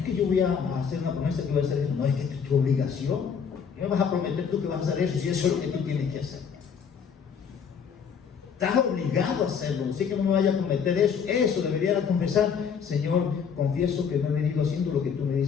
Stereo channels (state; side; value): quieter; right; 6.8 dB